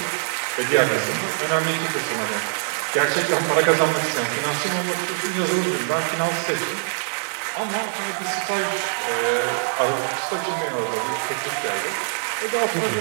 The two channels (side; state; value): left; silent; 63 dB below the other